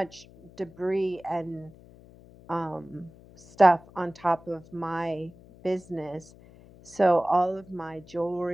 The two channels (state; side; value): noise; left; hum, 23 dB below the sound